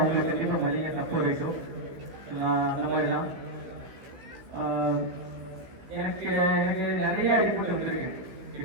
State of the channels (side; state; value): left; late; 15 ms